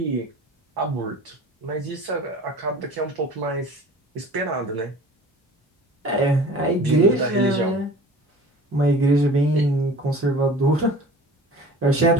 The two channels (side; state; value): both; normal; correlation 0.42